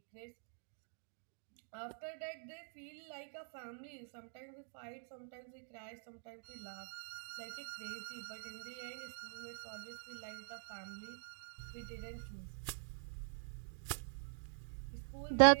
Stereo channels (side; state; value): left; silent; digital silence